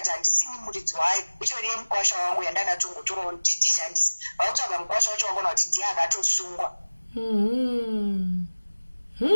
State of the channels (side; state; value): both; inverted; correlation -1.00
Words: handisini muridzi wayo itoriye mukwasha wangu yandanatongotorawo kuti ndishandise vakutsvaga mukwasha wacho wakona kuti ndiye akatosungwa